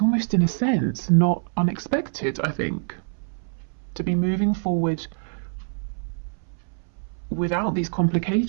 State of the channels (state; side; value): silent; left; 62 dB below the other